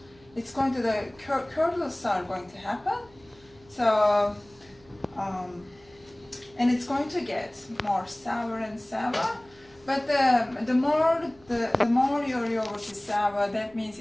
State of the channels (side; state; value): right; noise; hum, 28 dB below the sound